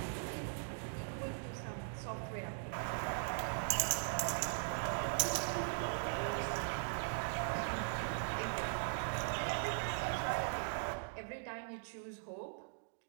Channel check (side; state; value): left; silent; digital silence